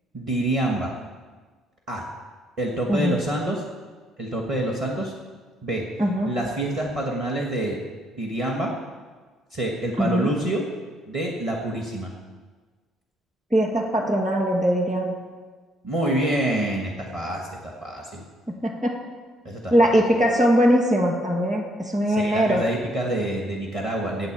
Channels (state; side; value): normal; both; correlation 0.71